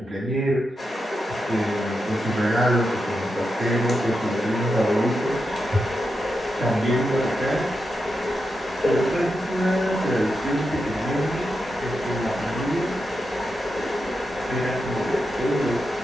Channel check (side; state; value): both; normal; correlation 0.87